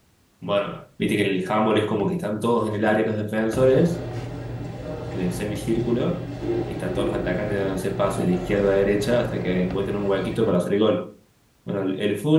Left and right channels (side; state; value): both; identical; correlation 1.00